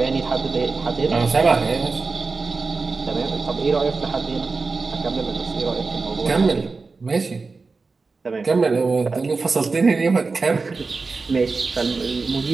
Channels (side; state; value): left; quieter; 4.2 dB